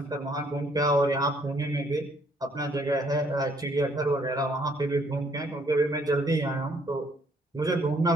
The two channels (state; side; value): normal; both; correlation 0.66